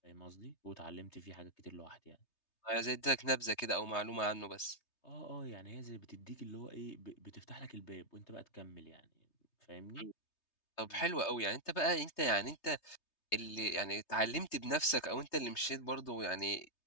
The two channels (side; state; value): right; late; 3.3 ms